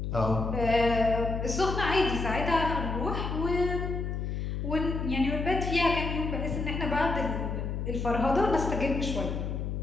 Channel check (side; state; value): left; noise; hum, 3 dB below the sound